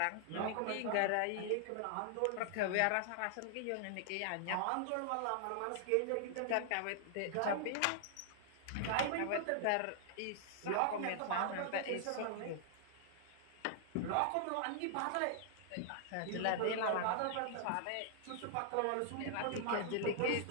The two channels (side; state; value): both; different; correlation -0.01